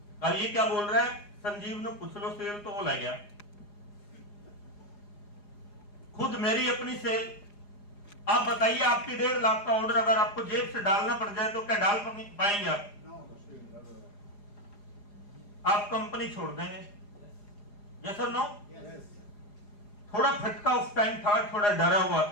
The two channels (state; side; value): late; right; 4.9 ms